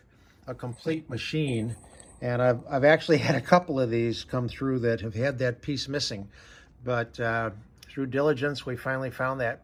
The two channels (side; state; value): both; identical; correlation 1.00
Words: a complete machine. And I've actually had a couple of these come through that have had that piece missing. But through diligence, we finally found that